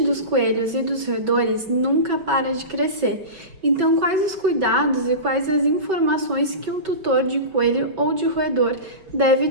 coelhos e dos roedores nunca para de crescer. Então, quais os cuidados e quais as informações que um tutor de coelho ou de roedor deve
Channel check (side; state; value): left; late; 5.3 ms